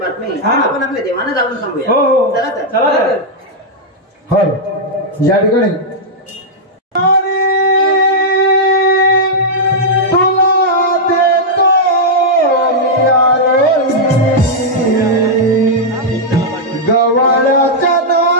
हा. आपण आपल्या देवानं जाऊन सांगूया हो हो चला तर चला तर हल या ठिकाणी तुला देतो मी आरोही, गव्हाळ्याच्या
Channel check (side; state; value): both; normal; correlation -0.06